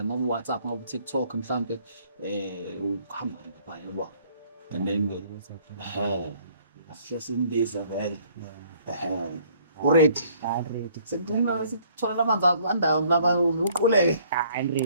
ngabe WhatsApp ngabe TikTok mhlambe ukuhamba lapha yabo. And then sesimbiza vele. Already. Sengcina sithola amanzi andawo laba uquleke.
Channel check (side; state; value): both; inverted; correlation -0.60